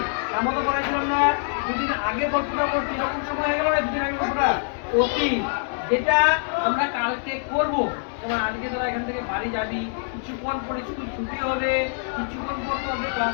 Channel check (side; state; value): right; silent; digital silence